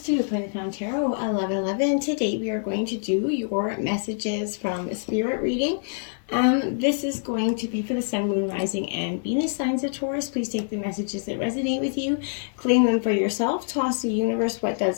to Planet Found Tarot 1111. Today we are going to do your messages from Spirit reading. This is going to be for the Sun, Moon, Rising, and Venus signs of Taurus. Please take the messages that resonate with you, claim them for yourself, toss the universe what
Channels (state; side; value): silent; right; 58 dB below the other